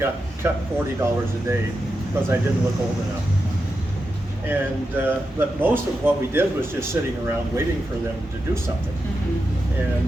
cut $40 a day because I didn't look old enough. And, but most of what we did was just sitting around waiting for them to do something.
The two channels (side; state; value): both; normal; correlation 0.88